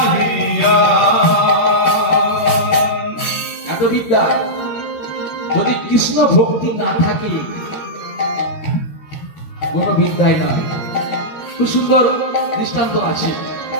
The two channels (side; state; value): right; late; 13 ms